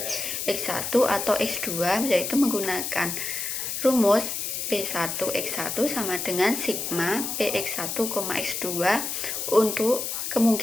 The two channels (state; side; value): noise; left; hiss, 3 dB below the sound